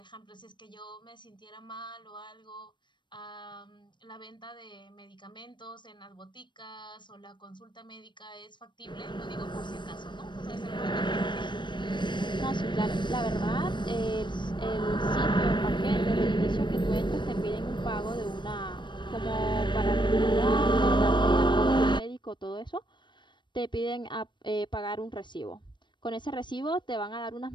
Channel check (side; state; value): right; late; 0.22 ms